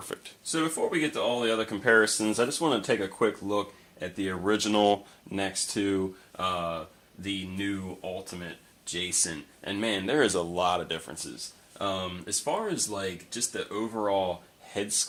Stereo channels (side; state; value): both; identical; correlation 1.00